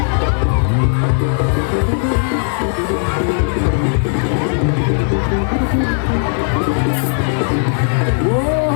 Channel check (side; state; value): right; silent; 64 dB below the other